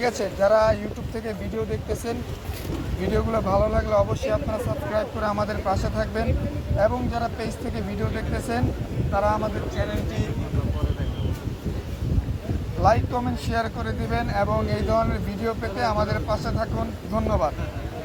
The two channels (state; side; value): identical; both; correlation 1.00